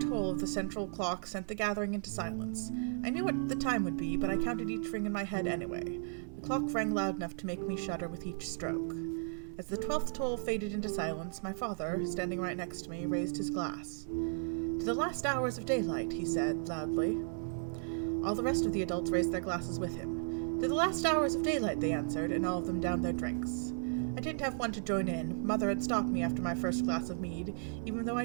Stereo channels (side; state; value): left; silent; digital silence